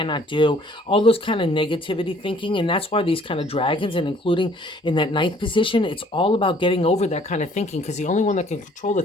do, all those kind of negativity thinking. And that's why these kind of dragons, and including in that ninth position, it's all about getting over that kind of thinking, because the only one that can control the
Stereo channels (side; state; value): both; normal; correlation 0.58